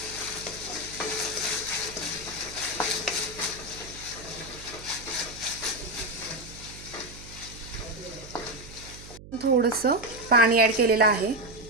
थोडंसं पाणी ॲड केलेलं आहे.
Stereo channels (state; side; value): noise; right; hum, 16 dB below the sound